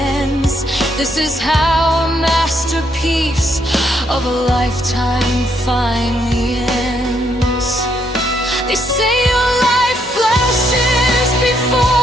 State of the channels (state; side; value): normal; both; correlation 0.74